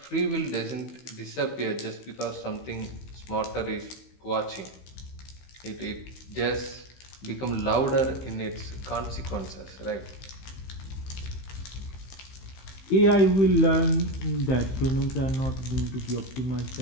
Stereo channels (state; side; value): late; right; 15 ms